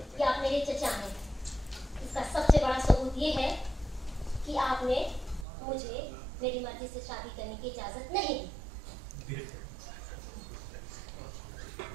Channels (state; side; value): drops out; left; at 5.5 s